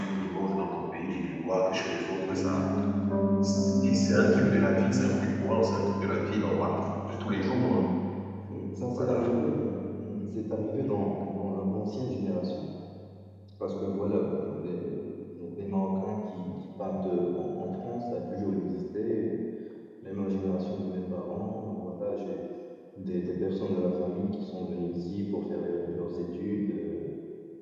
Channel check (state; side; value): identical; both; correlation 1.00